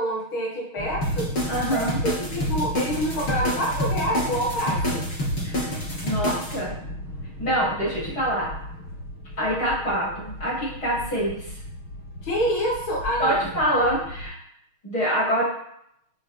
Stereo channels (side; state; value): right; late; 6.4 ms